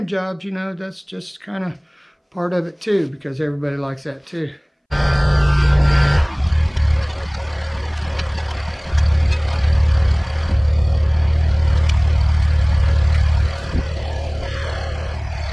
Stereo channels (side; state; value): both; identical; correlation 1.00